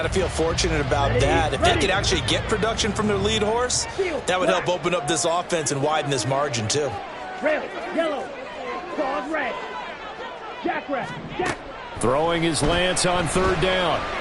to feel fortunate about that. If they could actually get production from their lead horse, that would help open up this offense and widen this margin, too. Red, yellow, dog red. Jackrabbit, Jack. Throwing his Lance on third down.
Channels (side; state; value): both; identical; correlation 1.00